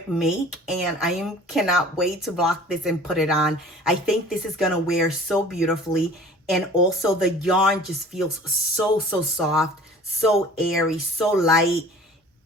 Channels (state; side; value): normal; both; correlation 0.46